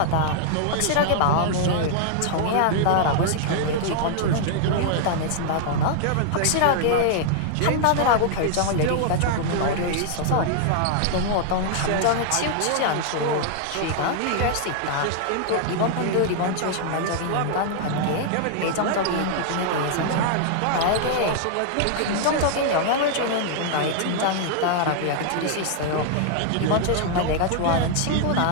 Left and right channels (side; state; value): both; different; correlation -0.01